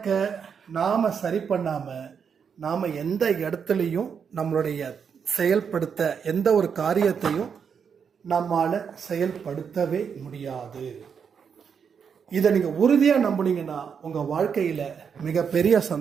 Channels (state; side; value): quieter; left; 6.8 dB